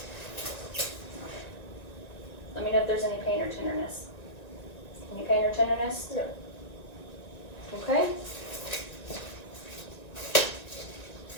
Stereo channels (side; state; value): right; late; 1.9 ms